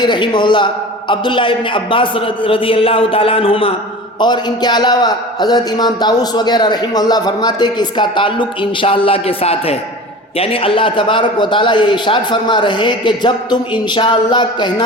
رحمہ اللہ، عبداللہ ابن عباس رضی اللہ تعالیٰ عنہما اور ان کے علاوہ حضرت امام طاؤس وغیرہ رحمہ اللہ فرماتے کہ اس کا تعلق انشاءاللہ کے ساتھ ہے. یعنی اللہ تبارک و تعالیٰ یہ ارشاد فرما رہے ہیں کہ جب تم انشاءاللہ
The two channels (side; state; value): both; normal; correlation 0.36